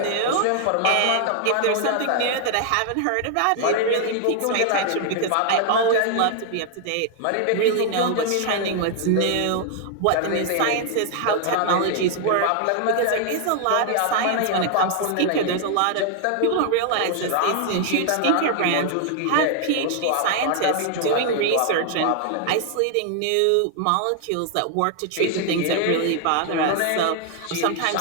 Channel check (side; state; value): both; different; correlation 0.00